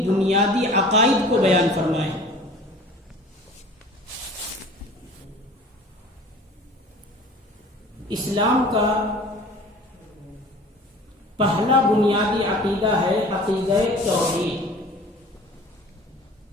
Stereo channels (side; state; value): both; normal; correlation 0.45